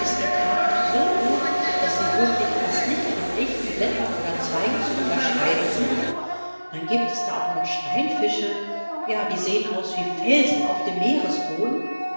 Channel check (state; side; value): inverted; both; correlation -1.00